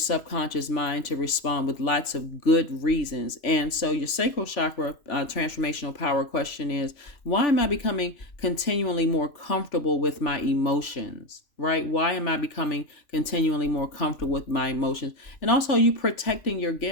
mind to respond with lots of good reasons. And so your sacral chakra transformational power question is, why am I becoming continually more comfortable with my emotions? Right? Why am I becoming continually more comfortable with my emotions? And also, you protecting your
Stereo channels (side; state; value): right; late; 3.4 ms